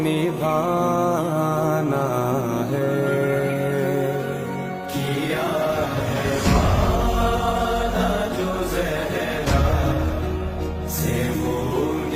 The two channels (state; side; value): identical; both; correlation 1.00